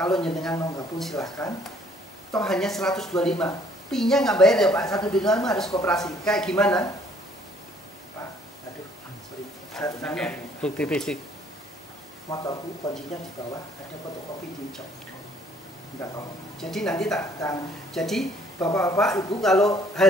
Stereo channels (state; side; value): normal; both; correlation 0.61